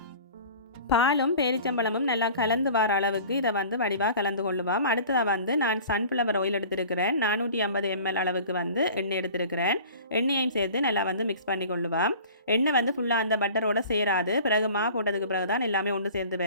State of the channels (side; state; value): both; inverted; correlation -0.43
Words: பாலும் பேரிச்சம்பழமும் நல்லா கலந்து வர அளவுக்கு இதை வடிவாக கலந்து கொள்ளுவோம். அடுத்ததாக நான் சன்ஃப்ளவர் ஆயில் எடுத்துருக்கிறேன். 450 ml அளவுக்கு எண்ணெய் எடுத்துருக்கிறேன். எண்ணெயையும் சேர்த்து நல்லா மிக்ஸ் பண்ணி கொள்ளுவோம். எண்ணெய் ஃபுல்லாக அந்த பட்டரோட சேராது. பிறகு மா போட்டதுக்கு பிறகு தான் எல்லாமே ஒன்று சேர்ந்து